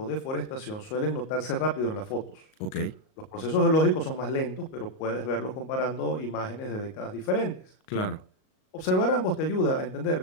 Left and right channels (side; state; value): right; late; 38 ms